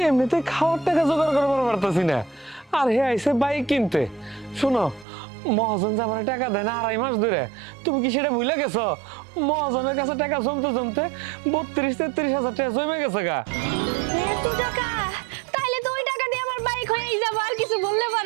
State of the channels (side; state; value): left; drops out; at 5.1 s